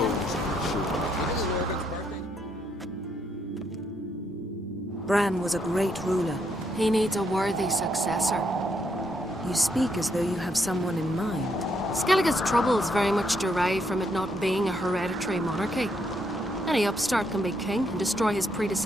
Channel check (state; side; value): normal; both; correlation 0.75